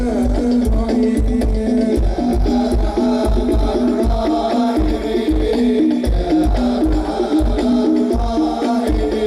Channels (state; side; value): identical; both; correlation 1.00